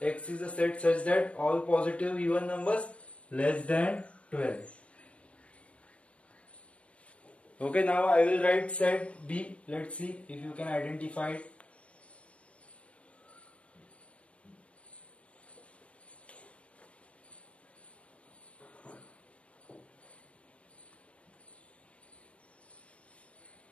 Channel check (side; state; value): right; late; 0.063 ms